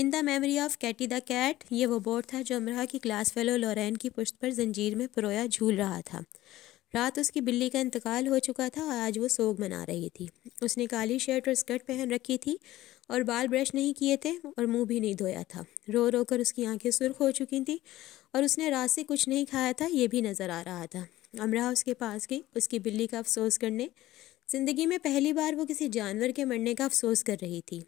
the memory of Katie the cat, یہ وہ بورڈ تھا جو امرہ کی کلاس فیلو لورین کی پشت پر زنجیر میں پرویا جھول رہا تھا۔ رات اس کی بلی کا انتقال ہو چکا تھا اور آج وہ سوگ منا رہی تھی۔ اس نے کالی شرٹ اور اسکرٹ پہن رکھی تھی اور بال برش نہیں کیے تھے اور منہ بھی نہیں دھویا تھا۔ رو رو کر اس کی آنکھیں سرخ ہو چکی تھیں اور اس نے رات سے کچھ نہیں کھایا تھا، یہ بھی نظر آ رہا تھا۔ امرہ اس کے پاس گئی، اس کی بلی کا افسوس کرنے۔ زندگی میں پہلی بار وہ کسی جانور کے مرنے کا افسوس کر رہی تھی۔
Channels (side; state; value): right; quieter; 15.9 dB